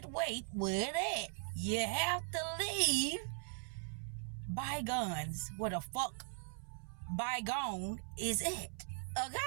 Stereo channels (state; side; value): silent; left; 51 dB below the other